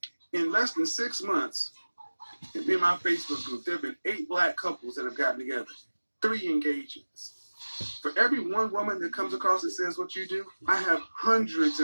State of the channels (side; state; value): both; inverted; correlation -1.00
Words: in less than 6 months, in my Facebook group, there have been 8 black couples that have gotten together, 3 engagements. For every one woman that comes across and says what you do, I have hundreds